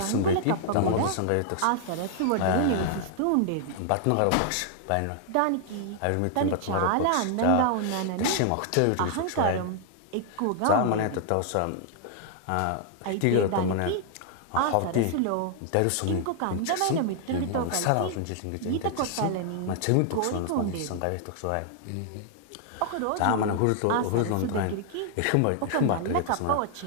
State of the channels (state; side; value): different; both; correlation -0.01